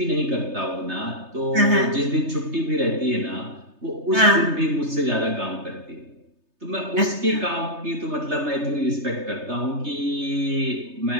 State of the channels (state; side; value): late; left; 3.3 ms